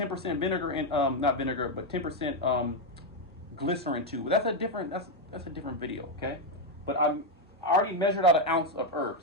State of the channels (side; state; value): both; normal; correlation 0.05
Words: vinegar in, not vinegar, but 10% glycerin too. That's a different video, okay? But I already measured out 1 ounce of herb,